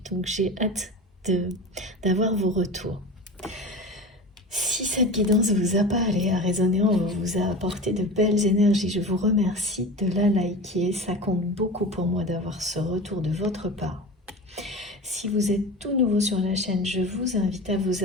Donc, j'ai hâte d'avoir vos retours. Si cette guidance vous a parlé, a résonné en vous, vous a apporté de belles énergies, je vous remercie de la liker. Ça compte beaucoup pour moi d'avoir ce retour de votre part. Si vous êtes tout nouveau sur la chaîne, je vous invite à vous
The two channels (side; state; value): both; normal; correlation 0.31